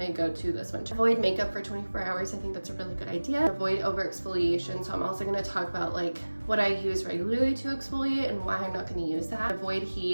go-to this winter. Avoid makeup for 24 hours. I think that's a really good idea. Avoid over exfoliation. So I'm also gonna talk about like what I use regularly to exfoliate and why I'm not gonna use that. Avoid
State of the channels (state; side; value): inverted; both; correlation -1.00